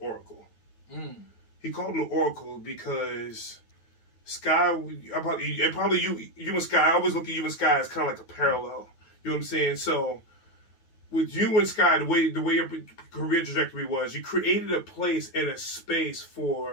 He called him the Oracle because Sky, probably you and Sky, I always look at you and Sky as kind of like a parallel. You know what I'm saying? So with you and Sky, the way your career trajectory was, you created a place and a space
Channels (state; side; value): late; right; 9.2 ms